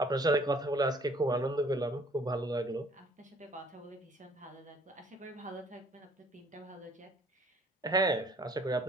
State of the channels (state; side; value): normal; both; correlation 0.57